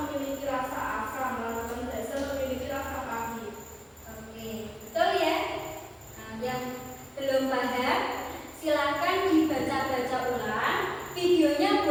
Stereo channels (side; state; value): both; identical; correlation 1.00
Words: memiliki rasa asam, larutan basa memiliki rasa pahit. Oke, betul ya? Nah, yang belum paham, silakan dibaca-baca ulang. Videonya